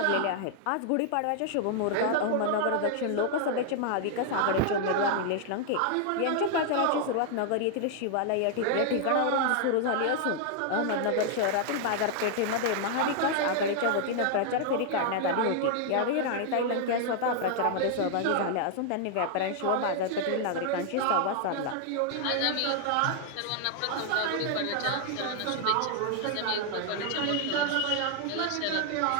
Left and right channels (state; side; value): different; both; correlation 0.00